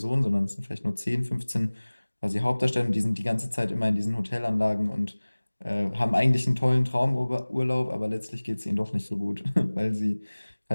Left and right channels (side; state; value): both; inverted; correlation -1.00